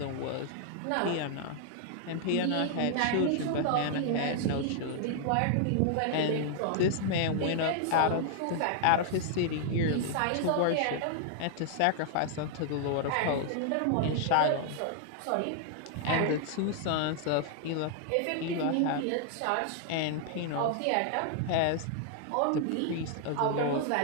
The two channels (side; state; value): both; different; correlation -0.01